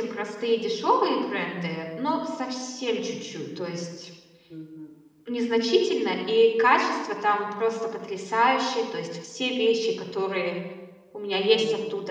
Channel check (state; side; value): identical; both; correlation 1.00